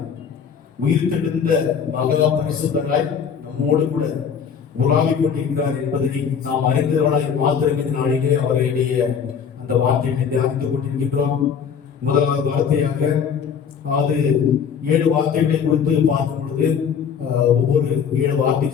உயிர் தெழுந்த மகா பரிசுத்தராய் நம்மோடு கூட உலாவிக் கொண்டிருக்கிறார் என்பதை நாம் அறிந்தவர்களாய் மாத்திரம் இந்த நாளிலே அவருடைய அந்த வார்த்தையை தியானித்துக் கொண்டிருக்கின்றோம். முதலாவது வார்த்தையாக அது 7 வார்த்தைகளை கொடுத்து பார்க்கும் பொழுது ஒவ்வொரு 7 வார்த்தை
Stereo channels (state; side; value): quieter; right; 7.2 dB